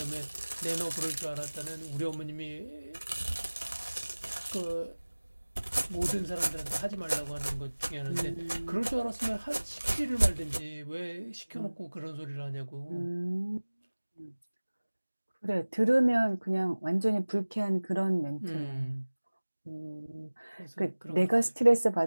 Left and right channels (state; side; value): inverted; both; correlation -1.00